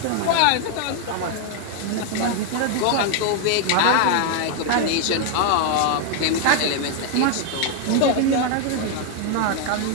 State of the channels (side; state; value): both; different; correlation 0.00